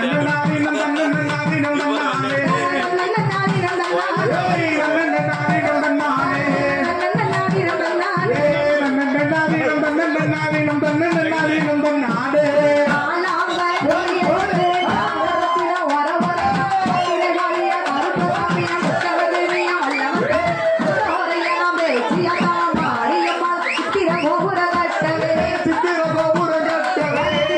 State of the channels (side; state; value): both; identical; correlation 1.00